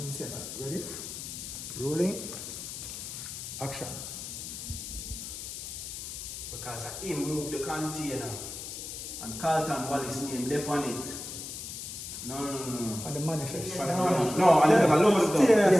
and Seba. Ready? Rolling. Action. Because I moved the container and Carlton Wallace name left on it. No. On the manifest. No, I never lost it.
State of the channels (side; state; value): left; noise; hiss, 8 dB below the sound